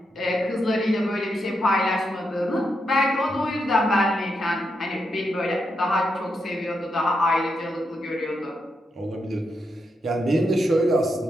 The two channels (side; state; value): both; normal; correlation 0.83